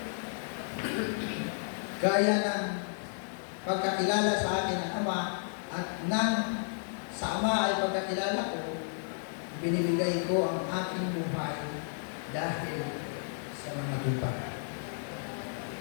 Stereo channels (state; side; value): silent; right; digital silence